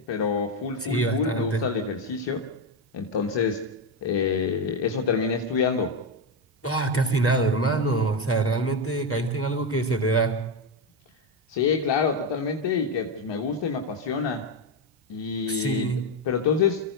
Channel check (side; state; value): both; normal; correlation 0.09